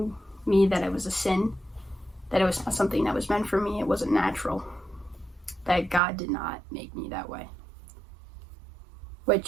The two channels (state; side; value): drops out; left; at 6.0 s